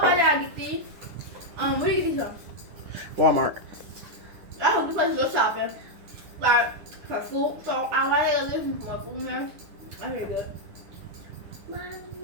y'all get these. Where do you get these from? Walmart. I hope this place go shopping. Like for food. So I like to listen for food there. That's really good.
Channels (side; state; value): left; late; 9.9 ms